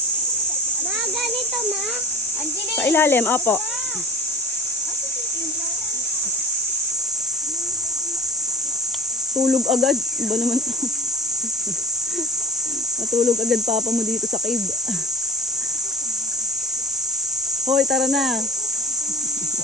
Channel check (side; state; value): both; normal; correlation 0.32